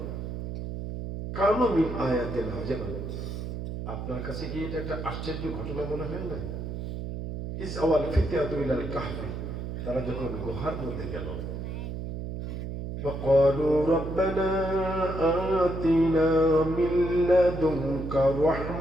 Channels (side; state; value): right; noise; hum, 6 dB below the sound